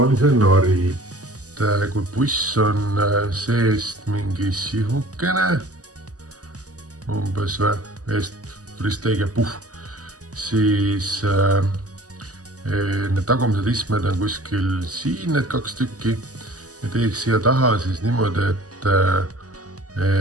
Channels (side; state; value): left; late; 0.67 ms